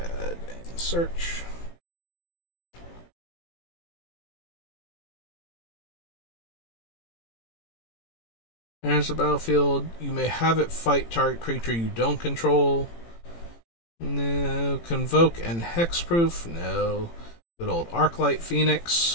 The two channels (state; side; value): late; right; 18 ms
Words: and search. Enters the battlefield. You may have it fight target creature you don't control. No. Convoke and Hexproof. No. Good old Arclight